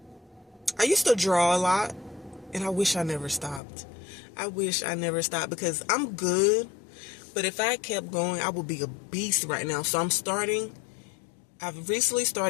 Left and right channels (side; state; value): right; drops out; at 3.6 s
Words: I used to draw a lot, and I wish I never stopped. Because I'm good, but if I kept going, I would be a beast right now. So I've recently